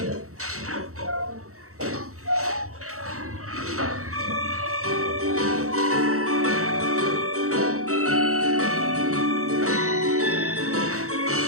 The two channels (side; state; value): left; late; 0.64 ms